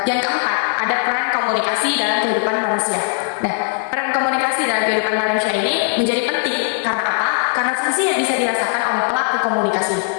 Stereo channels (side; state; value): right; silent; 67 dB below the other